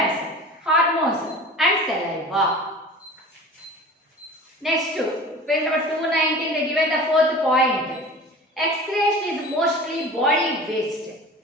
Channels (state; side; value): normal; both; correlation 0.39